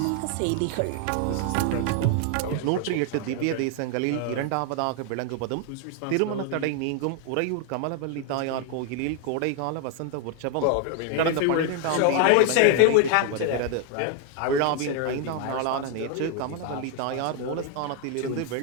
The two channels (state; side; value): different; both; correlation 0.00